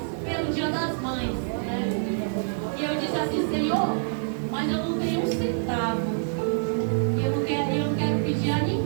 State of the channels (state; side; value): silent; left; digital silence